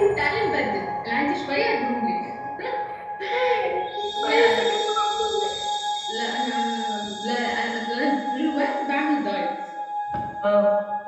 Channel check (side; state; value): both; identical; correlation 1.00